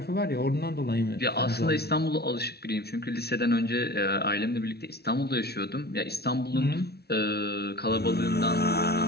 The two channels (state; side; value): late; right; 0.47 ms